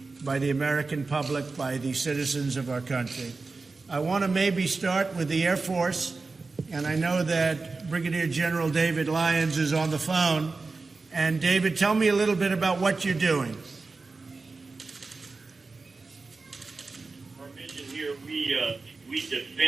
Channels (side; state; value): left; quieter; 3.9 dB